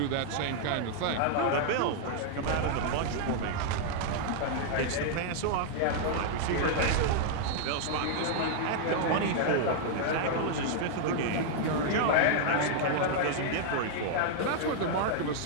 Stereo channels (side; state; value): both; different; correlation 0.00